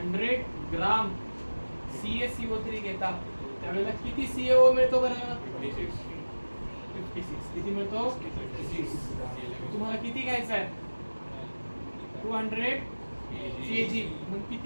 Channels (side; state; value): both; inverted; correlation -1.00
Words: ग्राम CaCO3 घेता त्यावेळेला किती CaO मिळतो बरं? 56. किती मिळतो? 56. तुम्हाला किती घ्यायचं आहे? 200 kg. मग